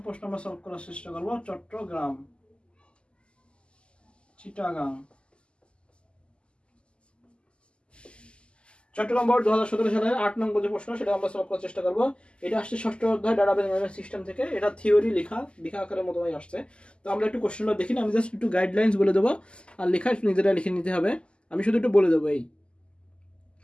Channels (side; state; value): right; late; 0.052 ms